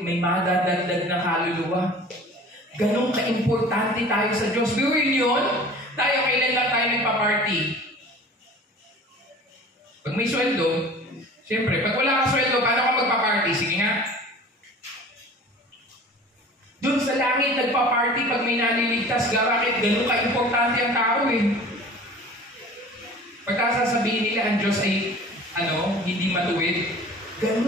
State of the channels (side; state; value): both; normal; correlation 0.43